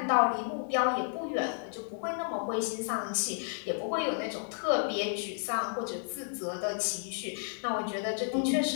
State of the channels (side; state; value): right; silent; digital silence